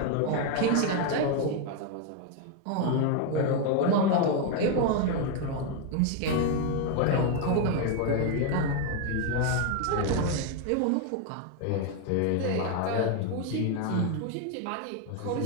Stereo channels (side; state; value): both; different; correlation 0.01